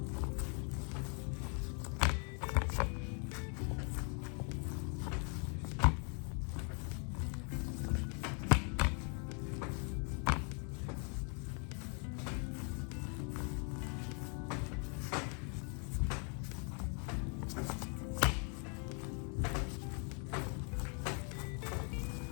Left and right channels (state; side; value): quieter; right; 38.8 dB